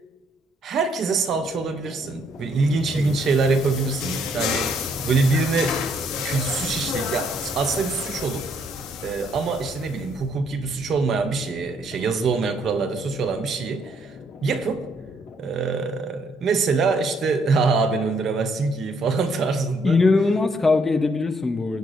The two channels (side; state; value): both; normal; correlation 0.69